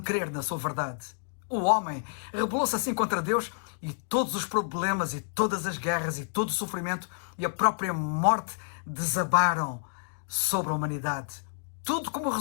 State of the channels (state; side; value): silent; right; digital silence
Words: na sua verdade. O homem rebelou-se assim contra Deus e todos os problemas e todas as guerras e todo o sofrimento e a própria morte desabaram sobre a humanidade. Tudo como